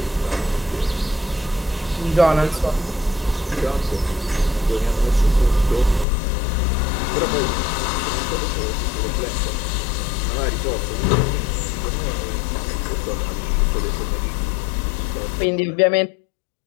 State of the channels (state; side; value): drops out; right; at 6.1 s